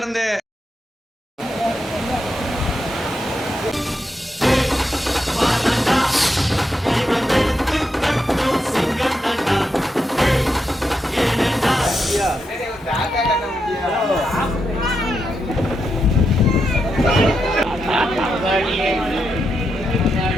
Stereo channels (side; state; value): both; normal; correlation 0.84